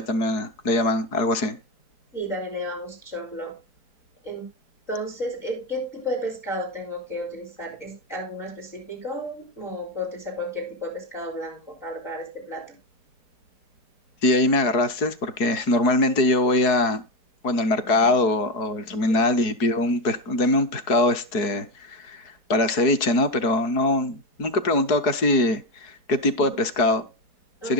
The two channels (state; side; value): late; right; 4.7 ms